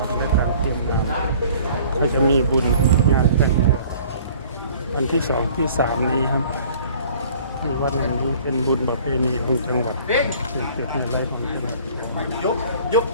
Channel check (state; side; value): inverted; both; correlation -0.52